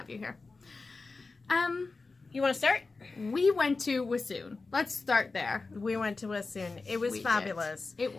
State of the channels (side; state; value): right; quieter; 3.9 dB